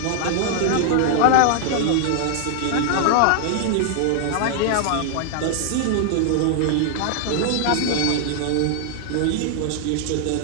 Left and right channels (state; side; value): different; both; correlation -0.01